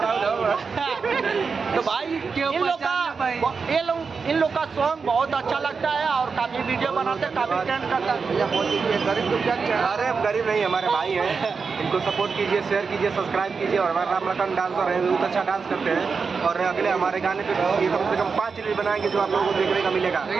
तो भाई इन लोग का सॉन्ग बहुत अच्छा लगता है और काफी वीडियो बनाते हैं, काफी ट्रेंड करता है। गरीब तो क्या? अरे गरीब नहीं, हमारे भाई हैं, इनको सपोर्ट कीजिए, शेयर कीजिए, सब्सक्राइब कीजिए। और हमारे रामलखन डांसर हैं, बहुत अच्छा डांस करते हैं और अगले हमारे गाने पे कम से कम 5 रील बनाएंगे जो आप लोगों को देखने का मिलेगा।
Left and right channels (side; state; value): left; quieter; 5.2 dB